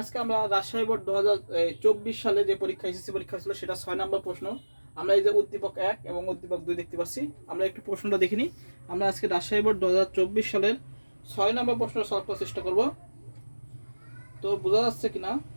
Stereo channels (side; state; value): both; inverted; correlation -1.00